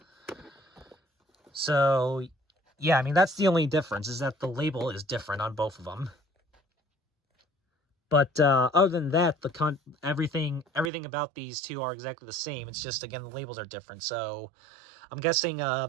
So, yeah, I mean, that's the only difference, is that the label is different on both of them. But other than that, everything about these two are exactly the same. It's just, again, the labels are different. So I'm guessing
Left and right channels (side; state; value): left; drops out; at 10.9 s